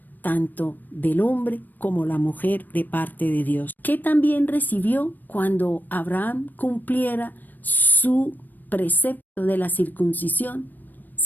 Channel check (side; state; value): right; late; 0.089 ms